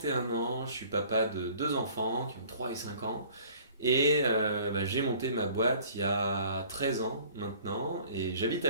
ans, je suis papa de deux enfants qui ont 3 et 5 ans. Et j'ai monté ma boîte il y a 13 ans maintenant et j'habite à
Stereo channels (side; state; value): both; inverted; correlation -0.52